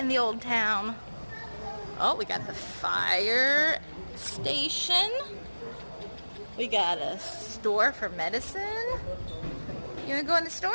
the old town. Oh, we got the fire station. We got a store for medicine. You want to go in the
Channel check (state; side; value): inverted; both; correlation -1.00